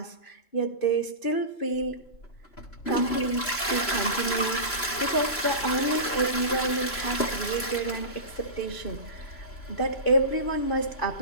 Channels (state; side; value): late; right; 3.0 ms